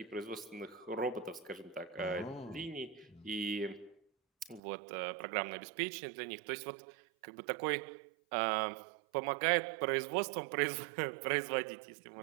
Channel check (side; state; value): left; drops out; at 4.6 s